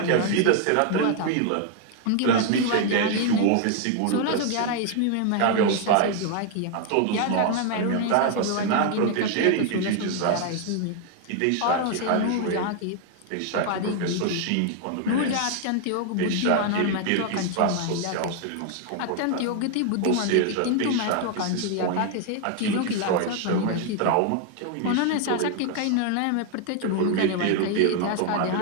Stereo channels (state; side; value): different; both; correlation 0.00